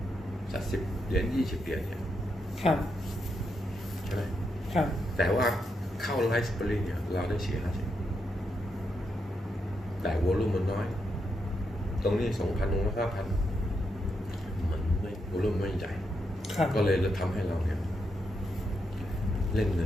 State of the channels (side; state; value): both; normal; correlation 0.82